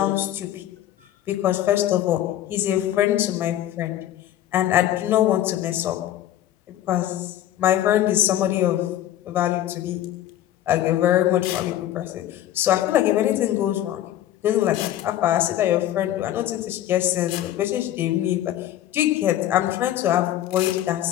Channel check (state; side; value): quieter; right; 12.6 dB